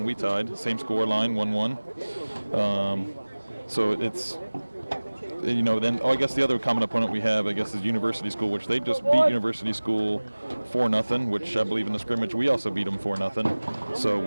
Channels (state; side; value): inverted; both; correlation -1.00